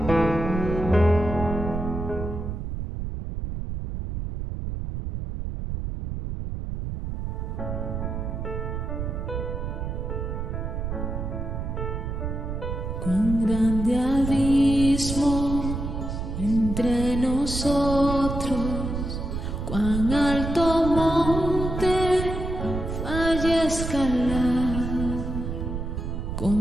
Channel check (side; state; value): right; noise; rumble, 4 dB below the sound